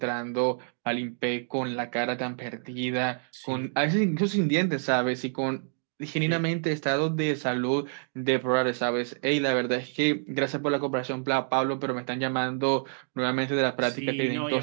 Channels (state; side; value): silent; left; digital silence